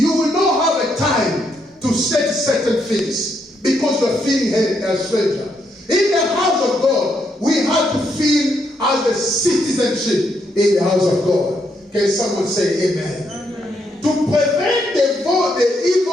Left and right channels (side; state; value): both; normal; correlation 0.77